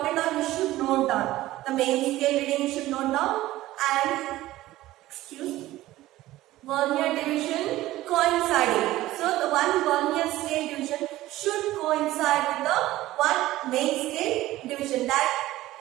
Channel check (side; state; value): left; quieter; 16.2 dB